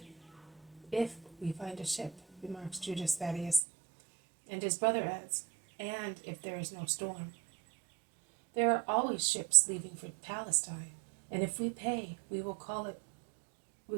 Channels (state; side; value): drops out; left; at 3.6 s